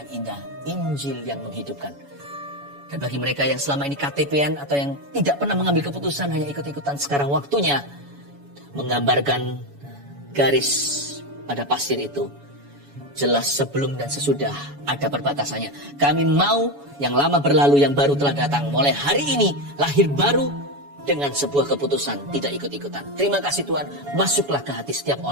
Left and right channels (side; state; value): left; late; 7.1 ms